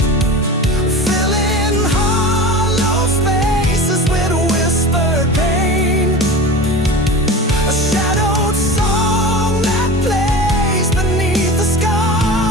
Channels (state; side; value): normal; both; correlation 0.33